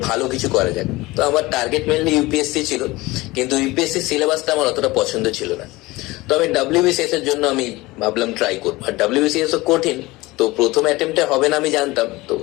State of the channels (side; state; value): right; quieter; 20.7 dB